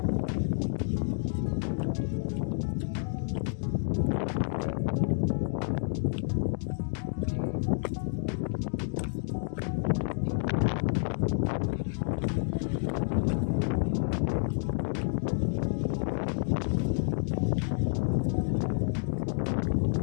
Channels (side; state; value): right; silent; digital silence